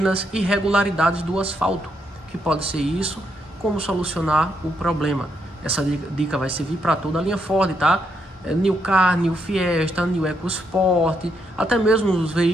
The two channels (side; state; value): both; normal; correlation 0.78